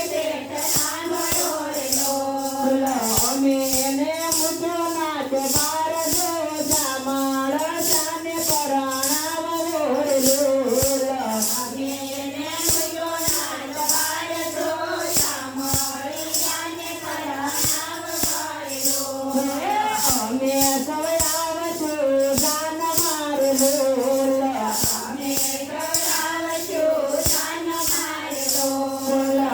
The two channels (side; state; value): both; identical; correlation 1.00